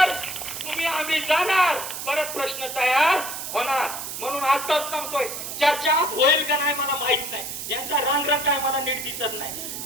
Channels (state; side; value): noise; right; hiss, 7 dB below the sound